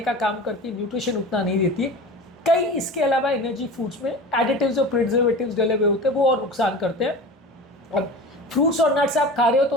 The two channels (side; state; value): both; normal; correlation 0.34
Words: का काम करती है, न्यूट्रिशन उतना नहीं देती है। कई इसके अलावा एनर्जी फूड्स में एडिटिव्स और प्रिजर्वेटिव्स डले हुए होते हैं, वो और नुकसान करते हैं। अब फ्रूट्स और नट्स आप खा रहे